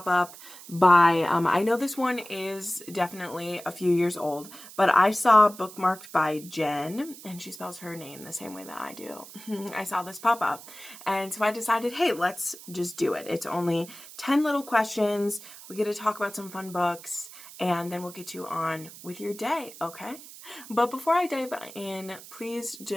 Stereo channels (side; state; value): right; noise; hiss, 17 dB below the sound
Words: up by, I know this one is definitely a few years old, but I saw Bookmarked by Jenn, and she spells her name the same way that I do. I saw this pop up, and so I decided, hey, let's just do it. It's only 10 little questions. We get to talk about some fun books, and then we'll get you on with your day, okay? But before I dive in, please